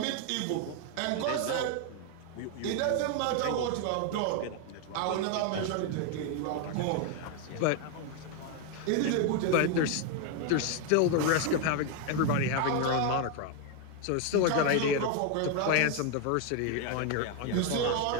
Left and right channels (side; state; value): both; different; correlation 0.01